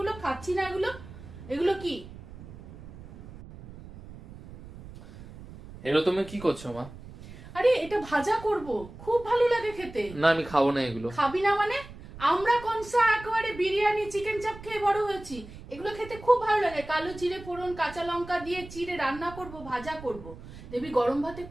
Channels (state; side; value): noise; right; rumble, 16 dB below the sound